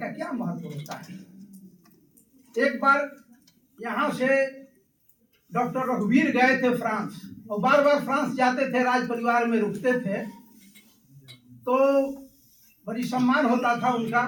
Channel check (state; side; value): identical; both; correlation 1.00